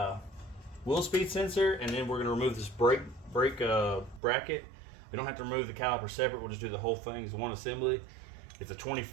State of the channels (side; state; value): left; drops out; at 4.2 s